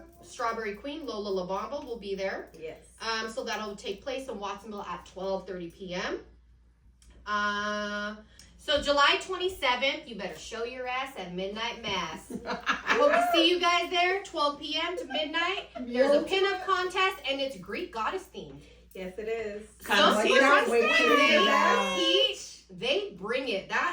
Strawberry Queen, Lola LaBamba, will be there. Yes. So that'll take place in Watsonville at 12:30 p.m. So July 27th, you better show your ass at Midnight Mass. I hope to see you guys there, 12 p.m. to midnight. There's a pinup contest, and it's Greek goddess themed. Yes, it is. Come see cannot us. wait to hear that. They bring it.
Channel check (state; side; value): identical; both; correlation 1.00